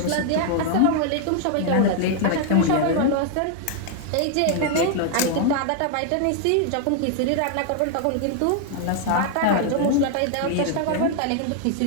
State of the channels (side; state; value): both; different; correlation 0.00